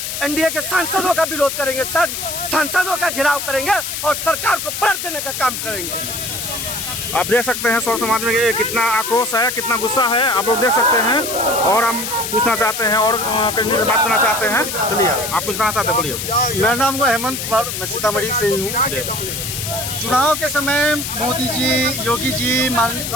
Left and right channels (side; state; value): left; noise; hiss, 5 dB below the sound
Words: NDA के सांसदों का विरोध करेंगे, सांसदों का घेराव करेंगे और सरकार को पलट देने का काम करेंगे। आप देख सकते हैं स्वर्ण समाज में कितना आक्रोश है, कितना गुस्सा है, आप लोग देख सकते हैं। और हम पूछना चाहते हैं और करने की बात करना चाहते हैं। चलिए, आप कुछ कहना चाहते हैं, बोलिए। मेरा नाम है हेमंत कुमार, मैं सीतामढ़ी से ही हूँ। चुनाव के समय मोदी जी, योगी जी,